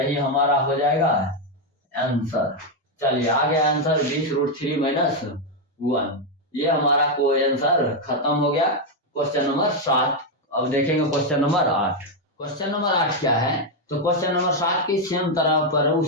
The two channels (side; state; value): both; normal; correlation 0.03